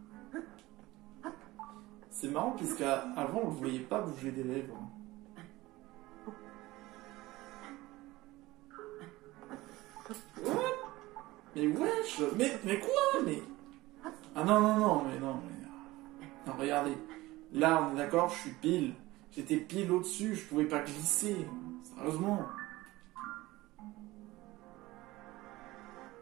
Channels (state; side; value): quieter; left; 19.0 dB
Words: C'est marrant puisqu'avant on ne voyait pas bouger des lèvres. Mais wesh! Mais quoi? Mais... Ah non, mais... Non, regardez. Là, on est d'accord, je suis pile. J'étais pile au-dessus, je pouvais pas glisser. Sérieusement.